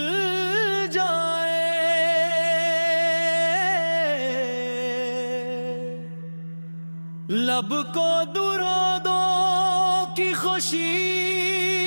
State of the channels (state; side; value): inverted; both; correlation -1.00